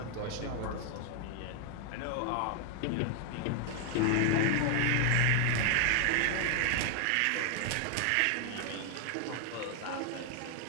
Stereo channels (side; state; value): both; different; correlation 0.00